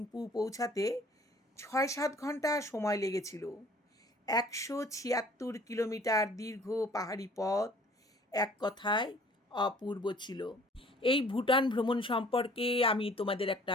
পৌঁছাতে ৬-৭ ঘন্টা সময় লেগেছিল। ১৭৬ কিলোমিটার দীর্ঘ পাহাড়ি পথ, এক কথায় অপূর্ব ছিল। এই ভুটান ভ্রমণ সম্পর্কে আমি তোমাদের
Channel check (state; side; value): normal; both; correlation 0.53